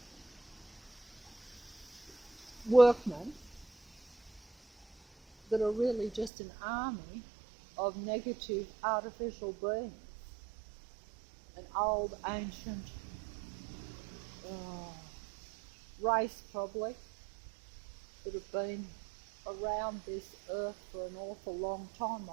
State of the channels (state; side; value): drops out; left; at 6.3 s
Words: workmen that are really just an army of negative artificial beings. An old, ancient race probably that have been around this earth for an awful long time,